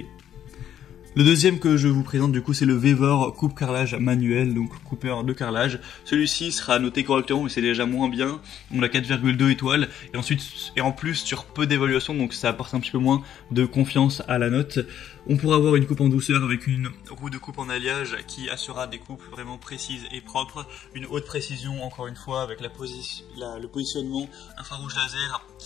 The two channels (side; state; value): right; quieter; 10.4 dB